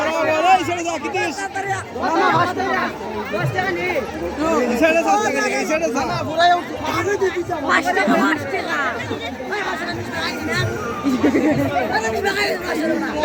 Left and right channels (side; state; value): both; identical; correlation 1.00